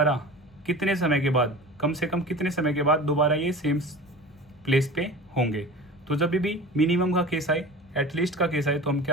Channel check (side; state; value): both; normal; correlation 0.36